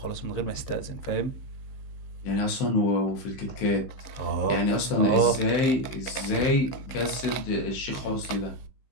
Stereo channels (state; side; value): late; right; 15 ms